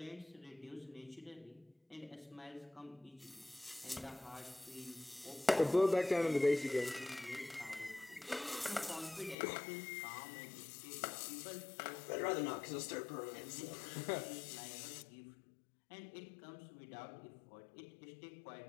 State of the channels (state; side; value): drops out; right; at 9.3 s